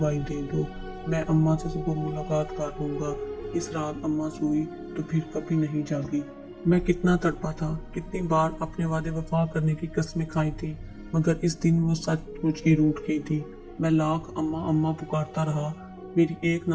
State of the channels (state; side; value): identical; both; correlation 1.00